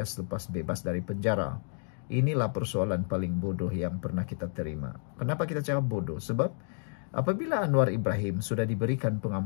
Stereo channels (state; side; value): silent; right; 57 dB below the other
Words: selepas bebas dari penjara. Inilah persoalan paling bodoh yang pernah kita terima. Kenapa kita cakap bodoh? Sebab apabila Anwar Ibrahim sudah diberikan